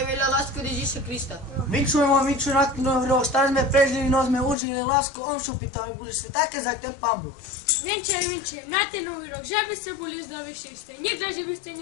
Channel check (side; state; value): right; drops out; at 4.5 s